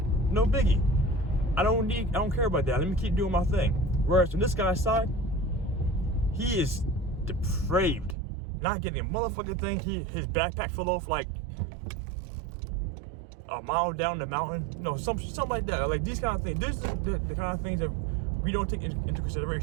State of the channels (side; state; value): left; drops out; at 8.2 s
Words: No biggie. I don't care about that. Let me keep doing my thing. Whereas on this guy's side, he is depraved. Not getting a motherfucking thing. His backpack fell off like a mile down the mountain. No, something like that. Like these kind of things. This is the kind of things that we don't take into